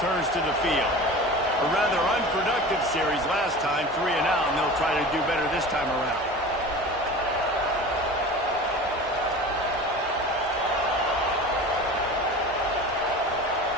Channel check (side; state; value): both; normal; correlation 0.35